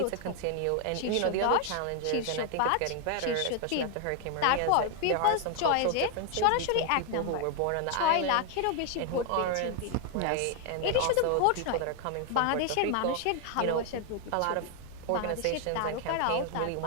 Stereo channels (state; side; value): different; both; correlation 0.00